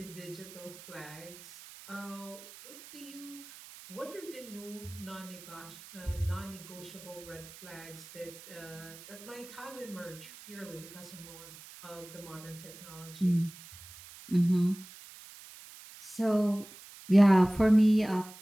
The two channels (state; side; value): noise; right; hiss, 17 dB below the sound